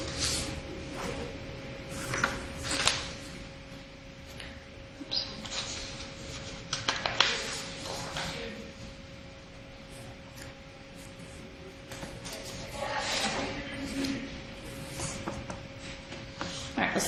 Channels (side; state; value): both; identical; correlation 1.00